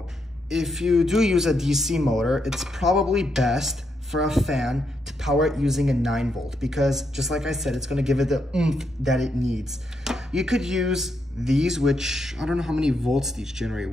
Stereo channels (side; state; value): both; normal; correlation 0.80